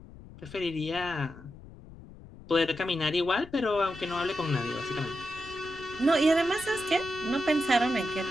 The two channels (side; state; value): left; noise; rumble, 18 dB below the sound